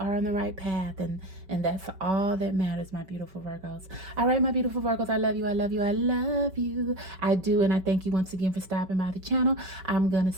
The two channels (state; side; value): late; left; 5.2 ms